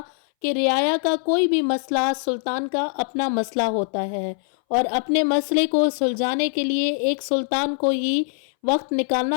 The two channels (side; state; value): right; silent; 62 dB below the other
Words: کہ رعایا کا کوئی بھی مسئلہ سلطان کا اپنا مسئلہ ہوتا ہے، اور اپنے مسئلے کو سلجھانے کے لیے ایک سلطان کو ہی وقت